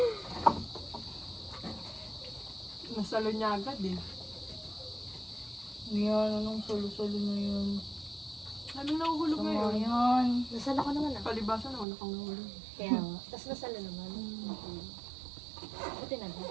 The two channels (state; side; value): drops out; left; at 11.9 s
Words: Nasalo niya agad eh. Yan, anong solo-solo na yun. Ano nahuhulog So, ngayon? yun. Nasala ko naman ah. Palibasan ako kang nahulog. Kaya nga. Tapos nasala naman. Buti na ba?